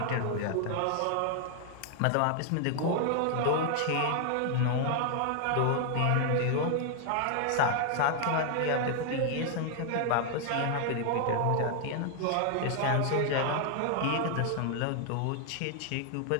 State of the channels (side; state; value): both; different; correlation 0.00